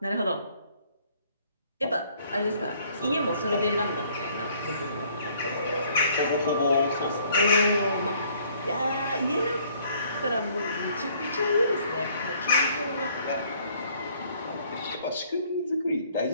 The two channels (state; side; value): inverted; both; correlation -0.62